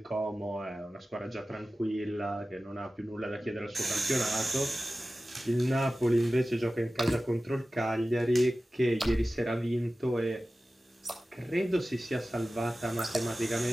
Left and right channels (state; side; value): normal; both; correlation 0.95